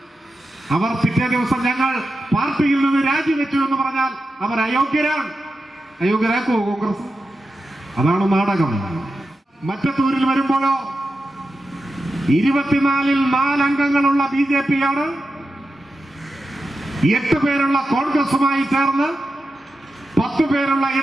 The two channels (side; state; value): both; normal; correlation 0.91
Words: അവർ പിറ്റേ ദിവസം ഞങ്ങൾ പാർട്ടിയിൽ നിന്ന് രാജിവെച്ചു എന്ന് പറഞ്ഞാൽ അവർ അയോഗ്യരാക്കുമോ കോൺഗ്രസ്? അതാണ് നാടകം. മറ്റത്തൂരിൽ വരുമ്പോഴോ 24-ൽ 4 അംഗങ്ങളുള്ള BJP ആണ് 8 പേരുള്ള കോൺഗ്രസുമായി ചേർന്ന് 10 പേരുള്ള